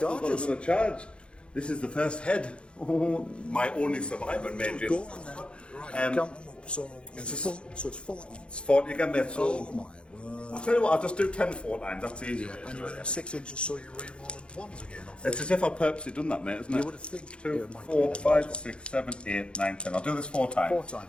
got charges. another charge. This is the first head. Oh, my only survivor, mate. Go on there. Right, count them up. So it's 40. It's 40 again, mate. So Oh my word. I'll tell you what, I'll just do 10 4 times. That's easier. And you're within 6 inches, so you're re-rolling ones again. Off It's as if I purposely done that, mate, isn't it? You would have think 2, it might 4, be 5, that 6, 7, 8, 9, 10. I'll do this 4 times. 4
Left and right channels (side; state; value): right; late; 0.056 ms